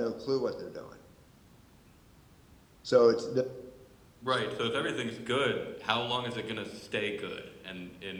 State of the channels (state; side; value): identical; both; correlation 1.00